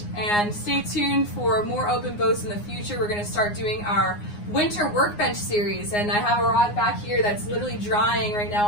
and stay tuned for more open boats in the future. We're going to start doing our winter workbench series, and I have a rod back here that's literally drying right now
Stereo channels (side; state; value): right; late; 9.7 ms